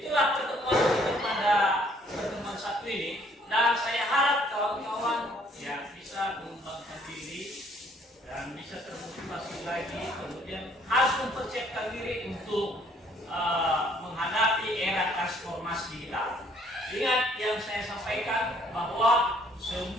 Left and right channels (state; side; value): normal; both; correlation 0.63